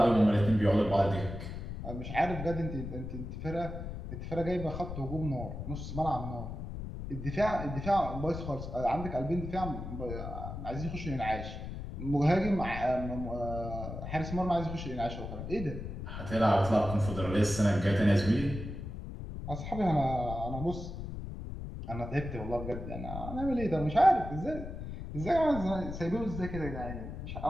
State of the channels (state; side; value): noise; left; rumble, 7 dB below the sound